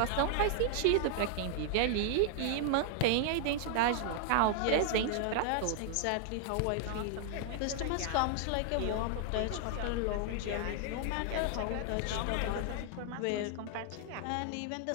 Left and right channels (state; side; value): different; both; correlation 0.00